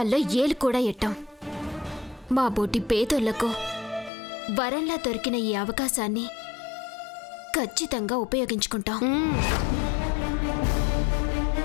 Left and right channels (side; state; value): right; drops out; at 4.1 s